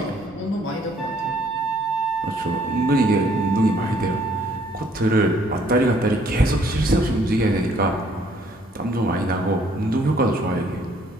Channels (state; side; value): normal; both; correlation 0.63